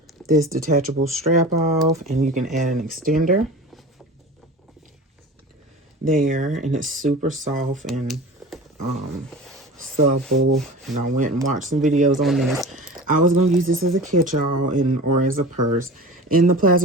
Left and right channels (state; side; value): normal; both; correlation 0.36